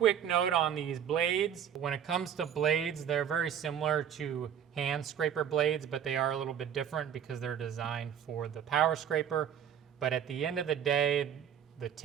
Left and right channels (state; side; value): quieter; left; 9.0 dB